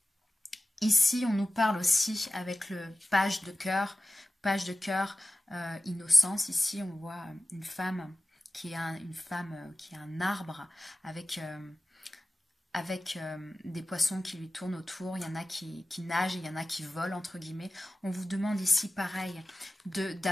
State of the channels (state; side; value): normal; both; correlation 0.96